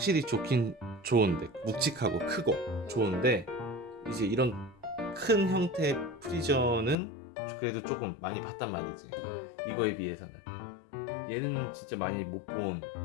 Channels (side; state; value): right; drops out; at 7.0 s